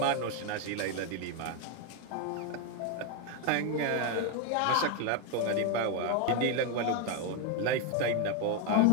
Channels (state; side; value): different; both; correlation 0.01